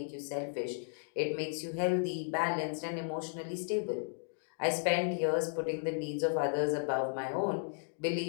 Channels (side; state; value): right; silent; digital silence